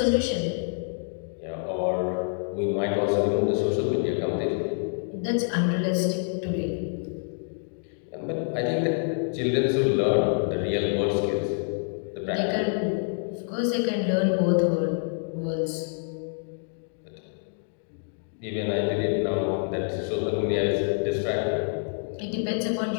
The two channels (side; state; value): right; silent; digital silence